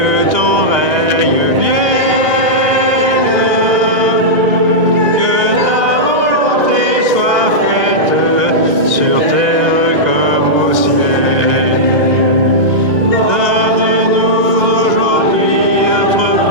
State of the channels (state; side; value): late; left; 2.1 ms